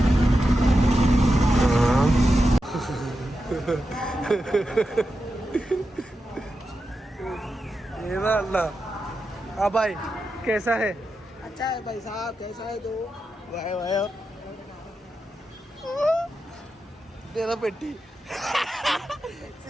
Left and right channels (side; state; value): both; normal; correlation 0.89